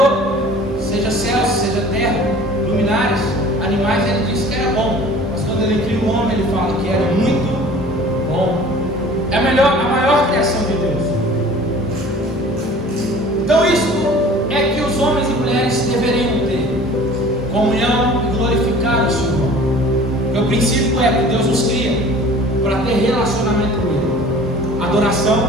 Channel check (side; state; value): both; normal; correlation 0.46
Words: seja céus, seja terra, luminares, animais, ele disse que era bom. Mas quando ele cria o homem, ele fala que era muito bom. É a maior criação de Deus. Então isso é que os homens e mulheres deveriam ter: comunhão e glorificar o Senhor. O princípio é que Deus nos cria para ter relacionamento com ele. Adoração